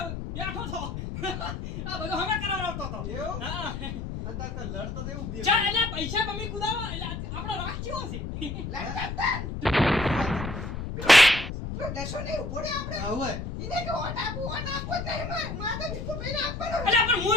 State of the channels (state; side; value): noise; left; rumble, 6 dB below the sound